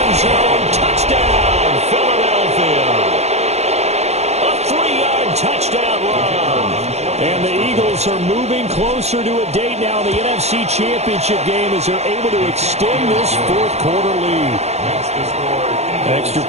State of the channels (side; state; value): left; late; 0.31 ms